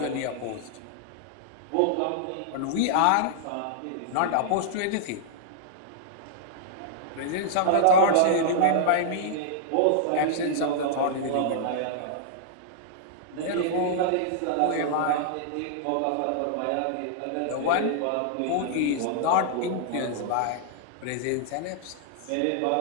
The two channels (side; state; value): both; different; correlation -0.01